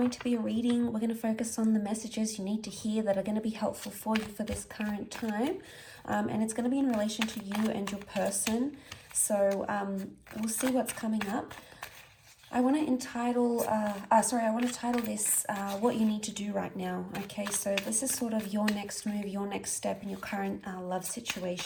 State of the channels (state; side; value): identical; both; correlation 1.00